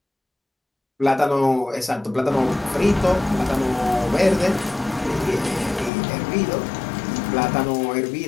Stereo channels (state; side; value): drops out; right; at 5.9 s